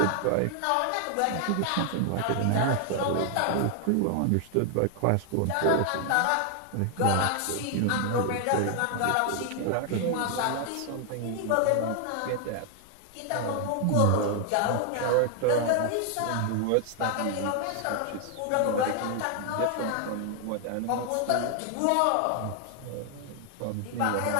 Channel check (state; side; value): different; both; correlation 0.00